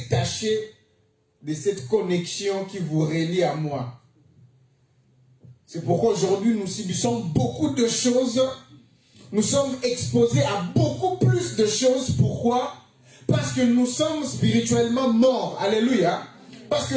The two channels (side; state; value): both; identical; correlation 1.00